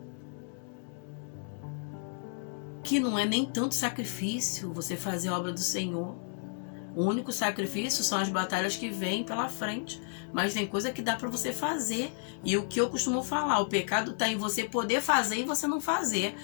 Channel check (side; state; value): right; silent; digital silence